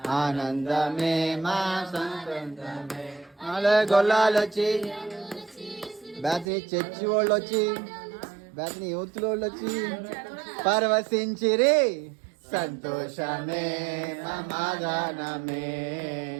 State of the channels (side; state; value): left; drops out; at 6.5 s